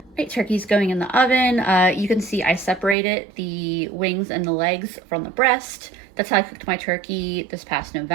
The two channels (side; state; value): left; drops out; at 3.0 s